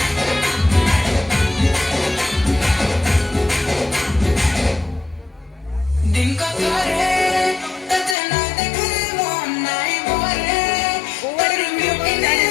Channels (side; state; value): right; drops out; at 8.2 s